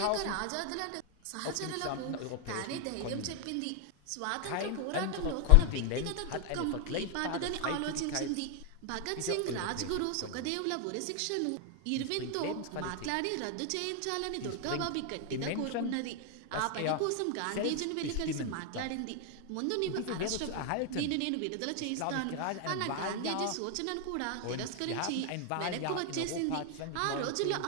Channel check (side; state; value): both; different; correlation 0.00